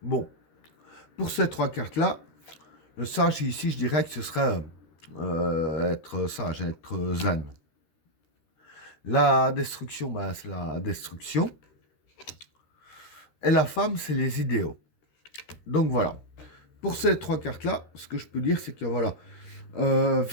Bon, pour ces trois cartes-là, le sage ici, je dirais que ce serait être sage, être zen. La destruction, ben, c'est la destruction. Et la femme, c'est les idéaux. Donc voilà. Pour ces trois cartes-là, ce que je peux dire, c'est que voilà,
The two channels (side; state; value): right; late; 13 ms